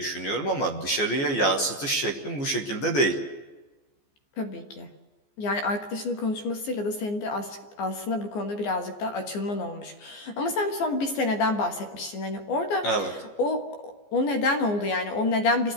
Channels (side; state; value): right; late; 14 ms